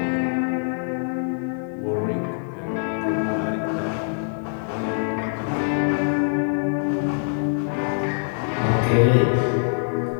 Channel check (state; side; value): silent; right; digital silence